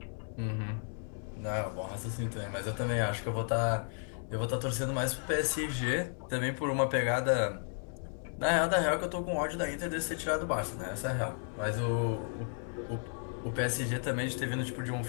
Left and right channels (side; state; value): right; silent; 55 dB below the other